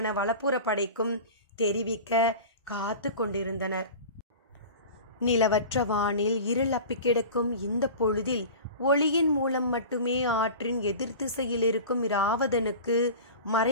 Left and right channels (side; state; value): both; inverted; correlation -0.35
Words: வலப்புற படைக்கும் தெரிவிக்க காத்து கொண்டிருந்தனர். நிலவற்ற வானில் இருள் அப்பி கிடக்கும் இந்த பொழுதில் ஒளியின் மூலம் மட்டுமே ஆற்றின் எதிர் திசையில் இருக்கும் இராவதனுக்கு